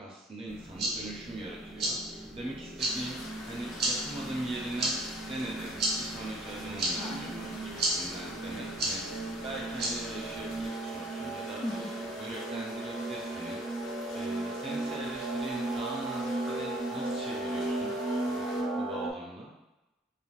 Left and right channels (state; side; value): normal; both; correlation 0.56